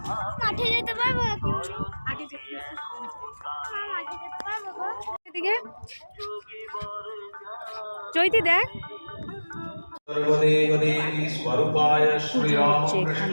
চৈতি দেখ सर्वदेवदेवी स्वरूपाय श्रीरामकृष्ण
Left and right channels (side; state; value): both; inverted; correlation -1.00